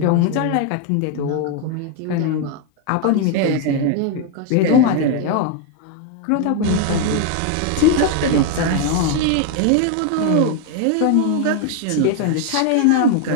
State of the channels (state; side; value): different; both; correlation 0.00